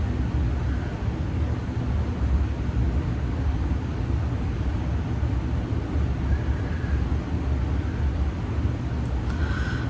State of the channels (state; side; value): identical; both; correlation 1.00